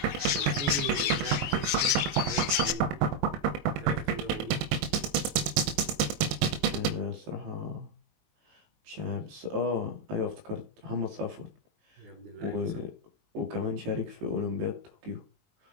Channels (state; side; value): late; left; 20 ms